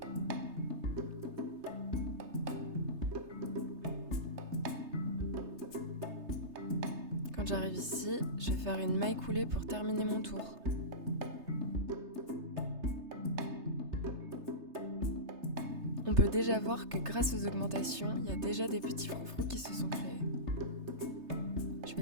Quand j'arrive ici, je vais faire une maille coulée pour terminer mon tour. On peut déjà voir que grâce aux augmentations, il y a déjà des petits froufrous qui se sont créés. Je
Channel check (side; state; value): left; late; 3.3 ms